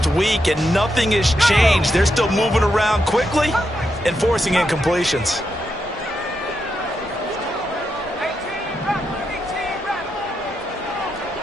week, and nothing has changed. They're still moving around quickly and forcing incompletions.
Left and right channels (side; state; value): both; normal; correlation 0.83